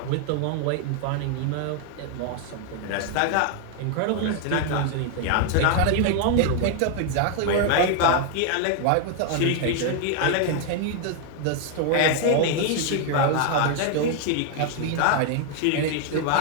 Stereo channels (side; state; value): both; different; correlation 0.00